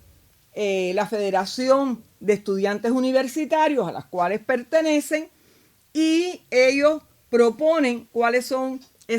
la Federación de Estudiantes Universitarios a las cuales pertenecen, y ellos proponen cuáles son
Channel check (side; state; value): both; identical; correlation 1.00